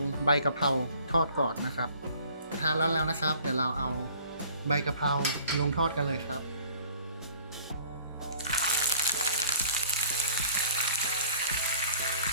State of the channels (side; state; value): both; inverted; correlation -0.53